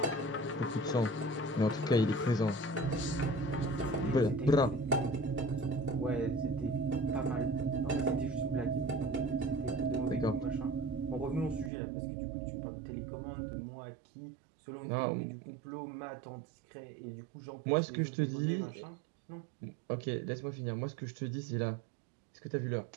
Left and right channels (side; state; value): left; drops out; at 11.7 s